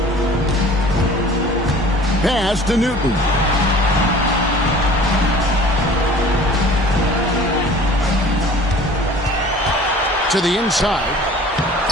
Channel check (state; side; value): normal; both; correlation 0.46